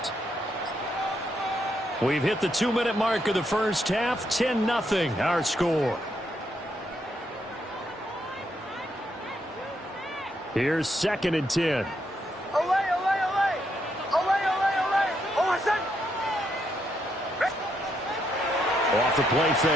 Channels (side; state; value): both; normal; correlation 0.78